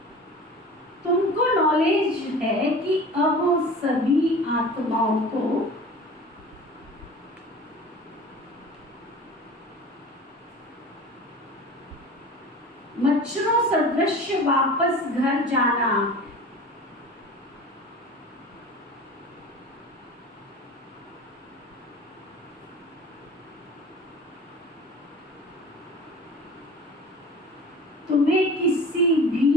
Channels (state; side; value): normal; both; correlation 0.39